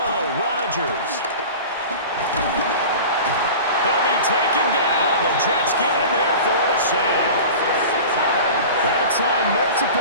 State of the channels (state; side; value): inverted; both; correlation -0.36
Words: Rodgers. He'll be taken down. The Jets get in there for the sack. That time,